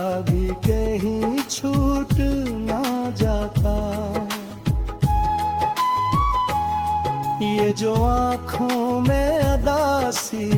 भी कहीं छूट ना जाता। ये जो आँखों में अदासी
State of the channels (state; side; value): identical; both; correlation 1.00